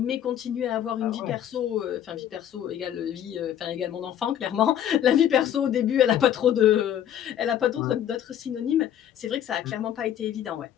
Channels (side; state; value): right; quieter; 10.3 dB